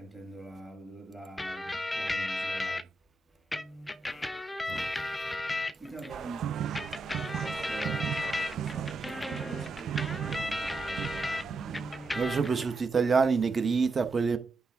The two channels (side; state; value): left; quieter; 3.0 dB